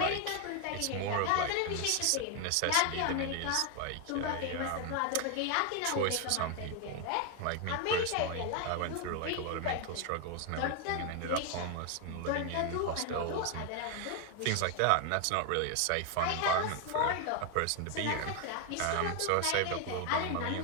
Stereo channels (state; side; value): different; both; correlation 0.01